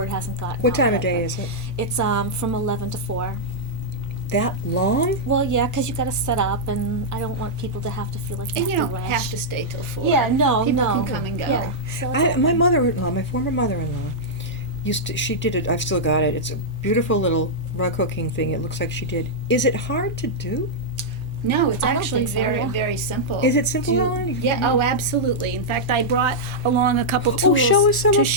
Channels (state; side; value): normal; both; correlation -0.08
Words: hasn't gotten What out time of yet, day but is it? It's from 11 to 4. That long? Well, yeah, because you got to set up, and I don't want people to have to feel like they And you have don't to rush. have to stay till 4. Yeah, no, People no. can come and go. Yeah. So My mother-in-law, my former mother-in-law, she did it. I've still got it. It's a beautiful little rug hooking thing. It looks like she did. Is it hard to do? No, it's I don't actually think so, very, yeah. very simple. Is it simple, Do- Ellen? Yeah, oh, absolutely. In fact, I brought along a couple tools show us some to of-